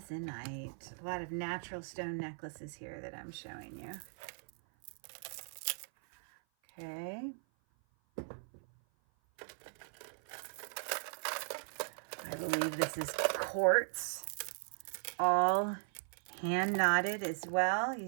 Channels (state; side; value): silent; left; 52 dB below the other